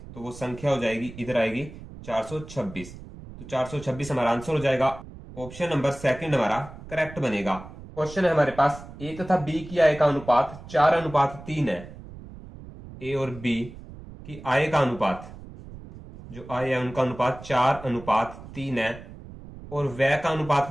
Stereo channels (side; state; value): right; noise; rumble, 15 dB below the sound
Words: तो वो संख्या हो जाएगी, इधर आएगी 426। तो 426 हमारा आंसर हो जाएगा। ऑप्शन नंबर 2 हमारा करेक्ट बनेगा। क्वेश्चन है हमारे पास, ए तथा बी की आय का अनुपात 4:3 है। ए और बी की आय का अनुपात, जो आय है उनका अनुपात 4:3 है और व्यय का